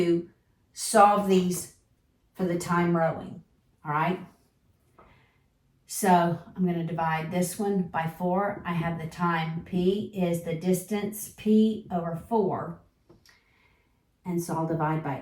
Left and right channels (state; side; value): identical; both; correlation 1.00